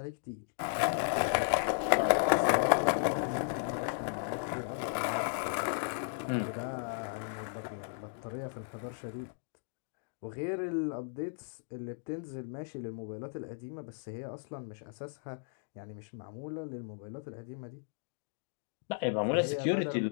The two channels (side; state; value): right; silent; digital silence